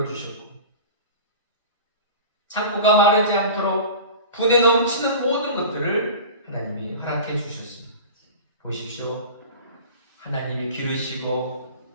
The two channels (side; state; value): both; inverted; correlation -0.35